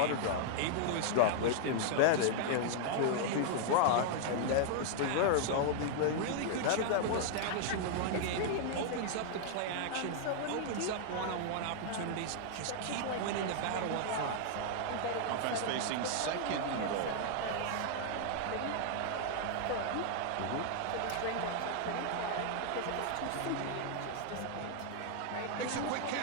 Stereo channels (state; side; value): different; both; correlation -0.01